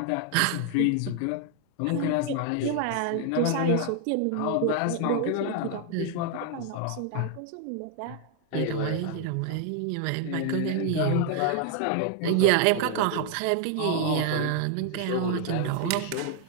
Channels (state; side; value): different; both; correlation 0.00